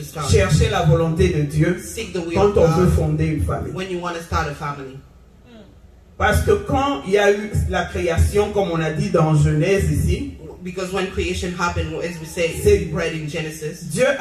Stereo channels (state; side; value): identical; both; correlation 1.00